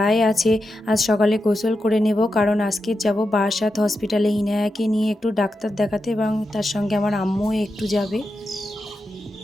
আছে। আজ সকালে গোসল করে নেব, কারণ আজকে যাব বারাসাত হসপিটালে ইনায়াকে নিয়ে একটু ডাক্তার দেখাতে, এবং তার সঙ্গে আমার আম্মুও একটু যাবে।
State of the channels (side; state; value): both; normal; correlation 0.88